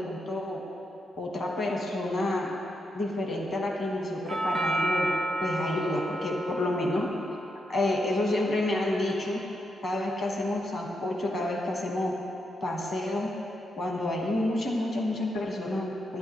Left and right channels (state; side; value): normal; both; correlation 0.82